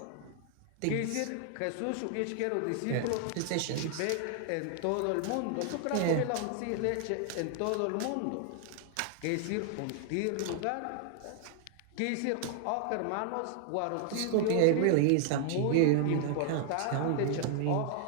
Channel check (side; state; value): both; different; correlation 0.00